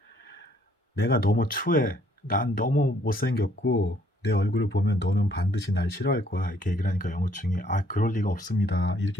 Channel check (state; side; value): normal; both; correlation 0.65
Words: 내가 너무 추해. 난 너무 못생겼고 내 얼굴을 보면 너는 반드시 날 싫어할 거야. 이렇게 얘기를 하니까 영호충이 그럴 리가 없습니다.